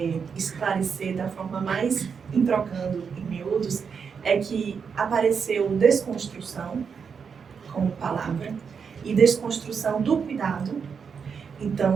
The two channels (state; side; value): quieter; left; 6.2 dB